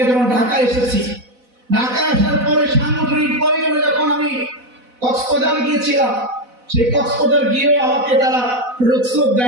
যখন ঢাকা এসেছি, ঢাকায় আসার পরে সাংগঠনিক প্রয়োজনে যখন আমি কক্সবাজার গিয়েছিলাম, সেই কক্সবাজার গিয়েও আমাকে তারা রোকসোক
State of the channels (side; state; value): left; late; 4.0 ms